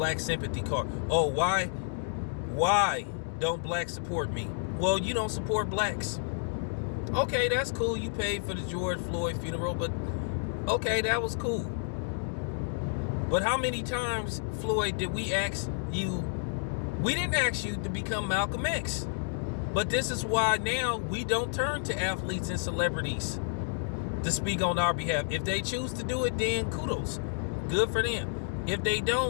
sympathy card. Oh, why? Why don't blacks support me? Well, you don't support blacks. Okay, that's cool. You paid for the George Floyd funeral, but okay, that was cool. But how many times, Floyd, did we ask you? We didn't ask you to become Malcolm X. But this is why now we don't turn to athletes and celebrities to speak on our behalf. If they choose to do it, then kudos. Good for them. If they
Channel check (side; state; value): right; silent; digital silence